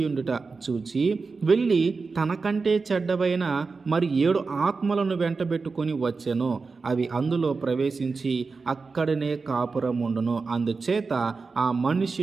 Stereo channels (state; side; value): quieter; left; 4.4 dB